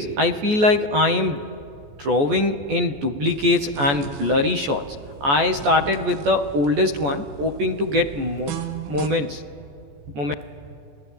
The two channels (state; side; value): late; left; 14 ms